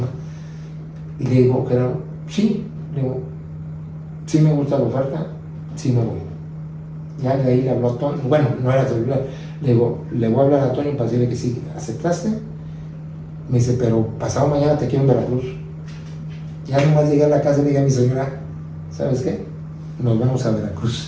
Y le digo, Gerardo, sí, sí me gusta la oferta, sí me voy. Ya de ahí le habló a Toño, bueno, no era celular, le digo, le voy a hablar a Toño para decirle que sí, ¿aceptaste? Me dice, pero pasado mañana te quiero en Veracruz. Ya nomás llegué a la casa y le dije a mi señora, ¿sabes qué? Nos vamos a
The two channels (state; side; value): identical; both; correlation 1.00